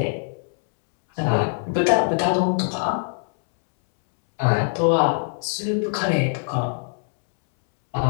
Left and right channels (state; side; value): silent; right; 64 dB below the other